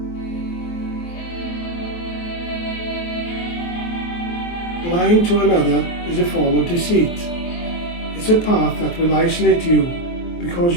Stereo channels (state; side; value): late; right; 23 ms